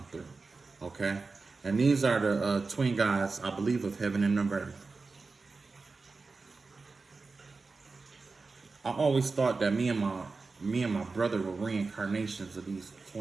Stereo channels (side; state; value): left; quieter; 4.0 dB